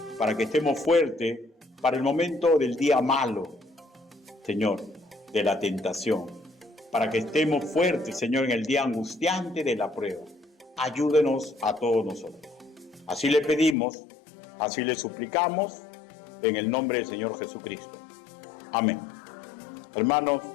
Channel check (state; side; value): drops out; right; at 13.8 s